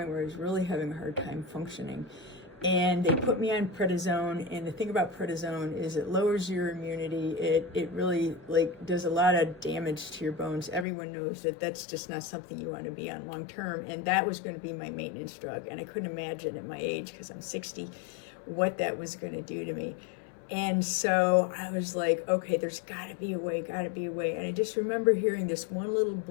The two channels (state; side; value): drops out; right; at 10.9 s